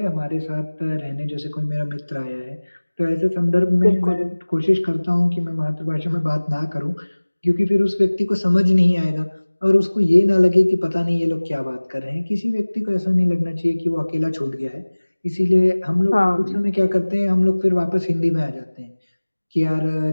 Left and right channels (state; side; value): inverted; both; correlation -1.00